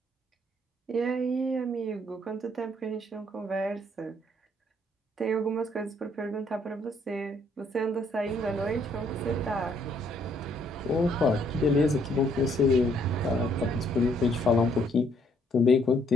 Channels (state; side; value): normal; both; correlation 0.67